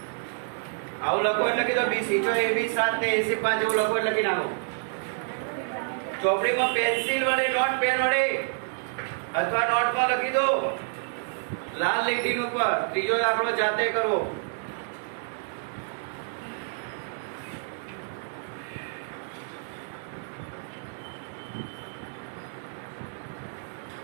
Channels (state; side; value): silent; left; digital silence